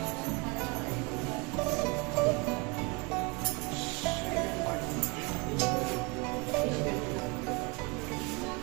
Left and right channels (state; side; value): quieter; left; 28.7 dB